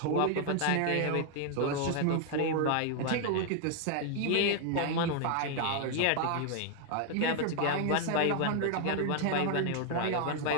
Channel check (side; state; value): both; different; correlation 0.00